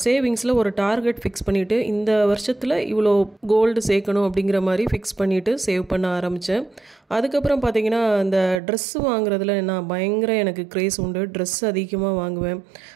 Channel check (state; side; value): drops out; left; at 8.6 s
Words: சேவிங்ஸில் ஒரு டார்கெட் ஃபிக்ஸ் பண்ணிவிட்டு இந்த வருஷத்தில் இவ்வளோ கோல்டு சேர்க்கணும் அப்படிங்கிற மாதிரி ஃபிக்ஸ் பண்ணிவிட்டு சேவ் பண்ண ஆரம்பித்தேன். அதுக்கப்புறம் பார்த்தீங்கன்னா இந்த ட்ரெஸ்ஸு வாங்குறதுல நான் பயங்கர எனக்கு க்ரேஸ் உண்டு. ட்ரெஸ் அதிகமாக வாங்குவேன்.